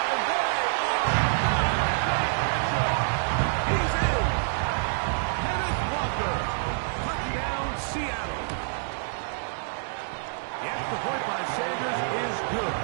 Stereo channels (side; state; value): left; silent; digital silence